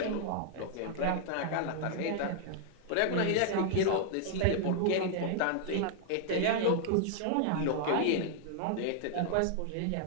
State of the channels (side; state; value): both; different; correlation -0.01